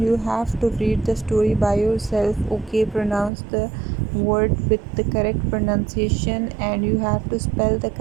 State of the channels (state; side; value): drops out; left; at 3.3 s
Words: have to read the story by yourself. Okay, pronounce the word with the correct pronunciation, and you have to spell the